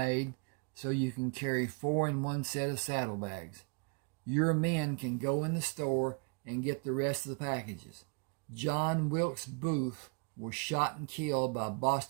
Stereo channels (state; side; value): quieter; left; 35.7 dB